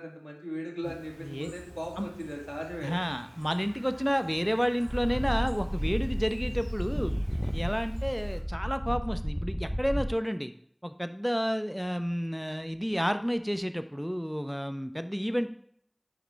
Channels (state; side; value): identical; both; correlation 1.00